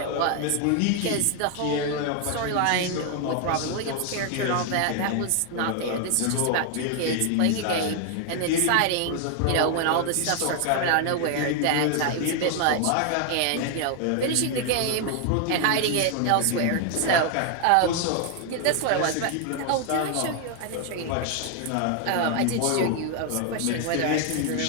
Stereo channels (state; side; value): different; both; correlation 0.00